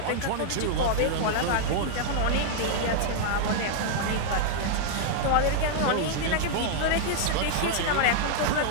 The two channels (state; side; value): different; both; correlation -0.01